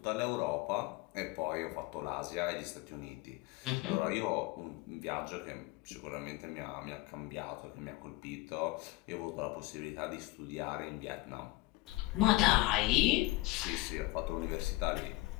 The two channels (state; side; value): quieter; right; 20.9 dB